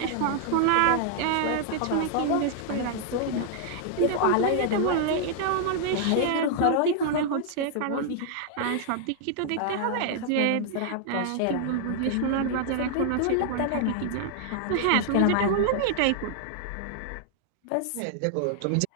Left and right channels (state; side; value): different; both; correlation -0.01